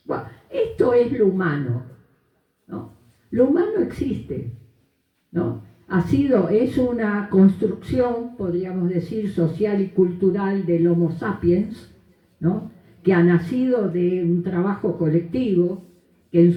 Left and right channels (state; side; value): identical; both; correlation 1.00